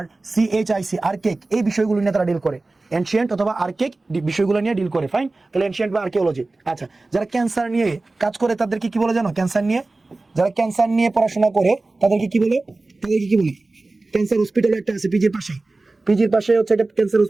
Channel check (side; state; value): left; quieter; 3.2 dB